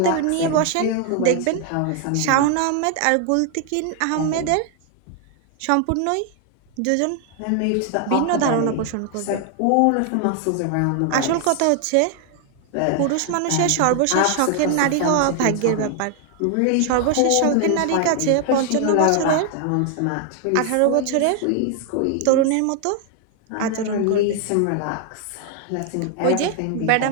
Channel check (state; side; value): different; both; correlation 0.00